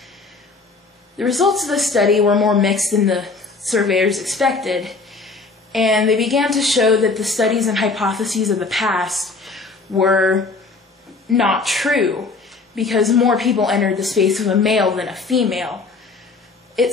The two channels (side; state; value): right; quieter; 4.0 dB